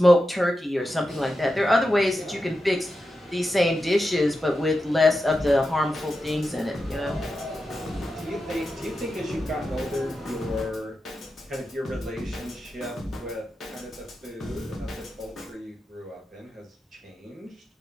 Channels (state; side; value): normal; both; correlation 0.89